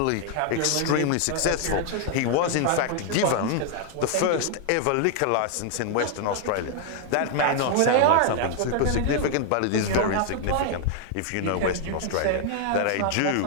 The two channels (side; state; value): both; different; correlation 0.00